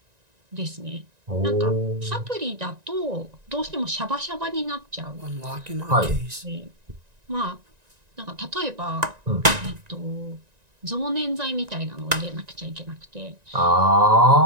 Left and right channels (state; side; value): late; left; 1.9 ms